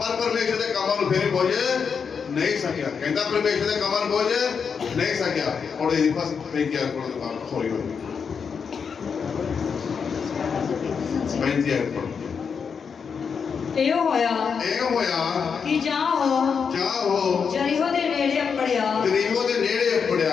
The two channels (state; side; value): quieter; right; 6.2 dB